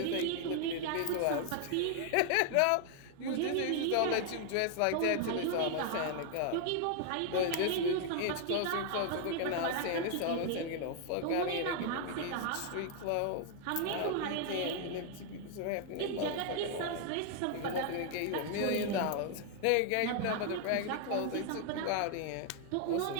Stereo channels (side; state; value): both; different; correlation 0.00